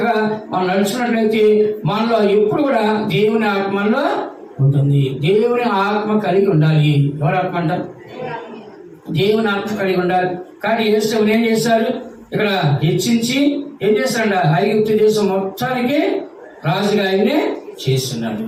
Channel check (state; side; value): identical; both; correlation 1.00